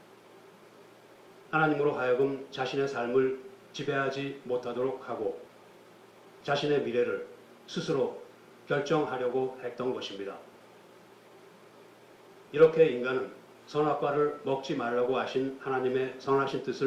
하나님으로 하여금 자신의 삶을 지배하지 못하도록 하고 자신의 미래를 스스로 결정하려고 했던 것입니다. 이렇게 인간은 선악과를 먹지 말라고 하신 하나님의 선하신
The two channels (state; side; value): identical; both; correlation 1.00